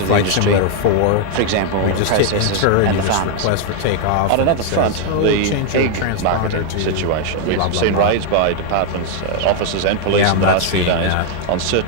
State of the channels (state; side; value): different; both; correlation 0.00